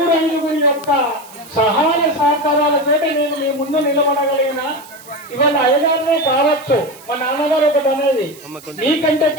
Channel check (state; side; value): noise; right; hiss, 21 dB below the sound